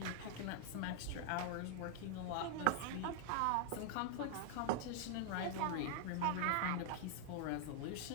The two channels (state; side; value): different; both; correlation 0.00